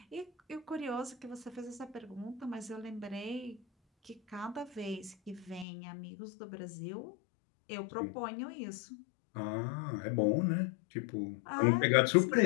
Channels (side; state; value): right; drops out; at 5.7 s